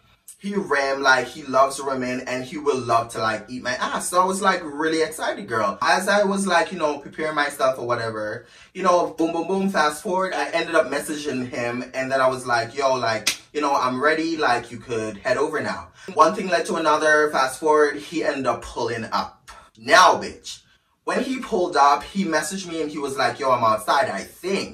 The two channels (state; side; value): identical; both; correlation 1.00